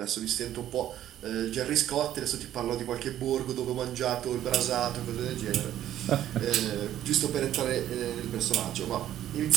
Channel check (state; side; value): quieter; left; 12.0 dB